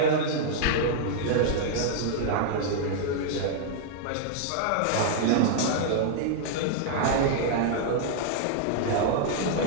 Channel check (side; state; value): both; different; correlation -0.01